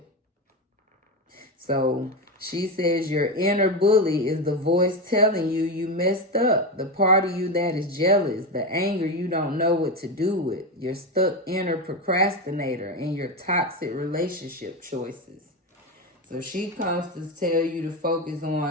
So she says your inner bully is the voice telling you you messed up. The part of you that is jealous, the anger you don't know what to do with, your stuck inner procrastinator, and your toxic relationship choices. So she comes to tell you to focus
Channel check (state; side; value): normal; both; correlation 0.15